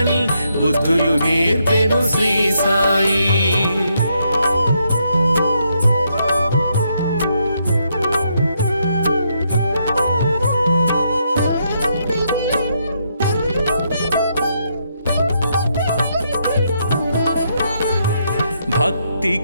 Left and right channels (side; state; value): both; inverted; correlation -0.77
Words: బుద్ధులు నేర్పెను శ్రీ సాయి.